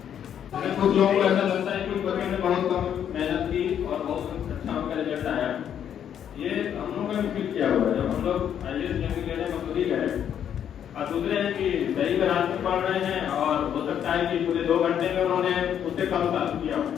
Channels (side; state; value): right; quieter; 9.2 dB